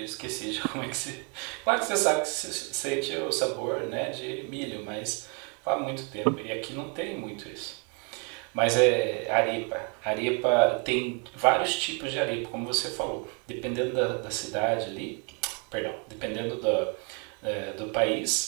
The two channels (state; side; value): quieter; left; 36.3 dB